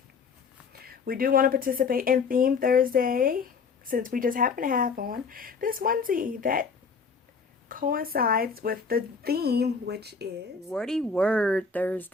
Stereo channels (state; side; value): quieter; right; 5.2 dB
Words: We do want to participate in Theme Thursday, since we just happen to have on this onesie that coincides with the theme, which is Wordy Word